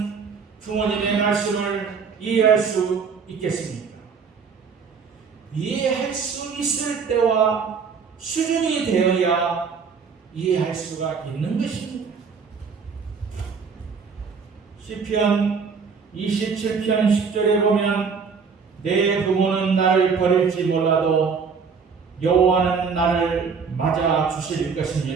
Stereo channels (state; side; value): quieter; left; 5.6 dB